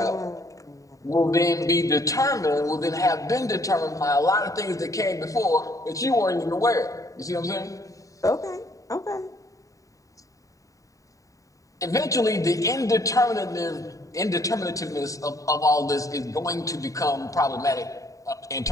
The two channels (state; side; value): late; right; 0.16 ms